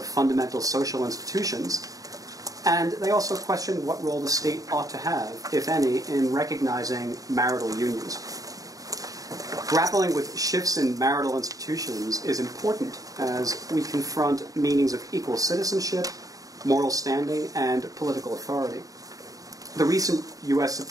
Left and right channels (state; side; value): late; left; 0.17 ms